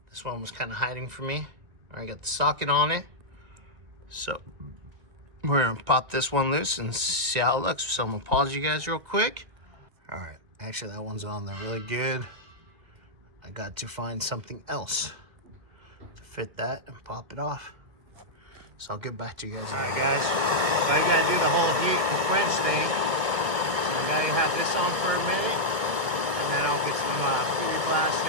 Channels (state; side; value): late; left; 2.2 ms